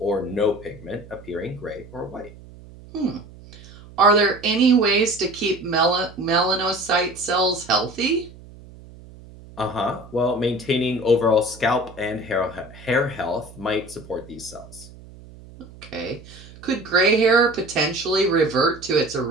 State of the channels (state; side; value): noise; right; hum, 20 dB below the sound